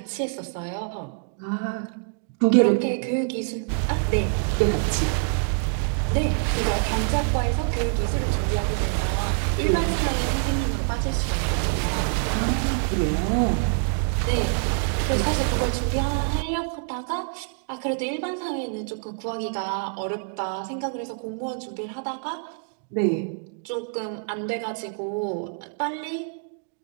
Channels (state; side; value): silent; left; 61 dB below the other